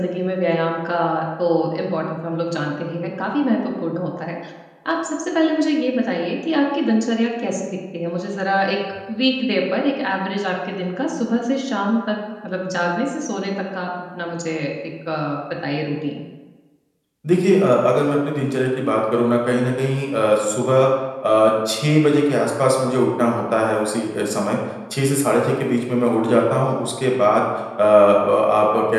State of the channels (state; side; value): identical; both; correlation 1.00